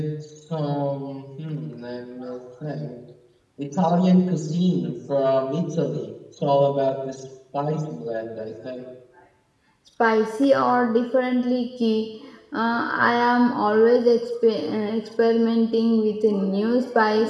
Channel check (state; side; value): identical; both; correlation 1.00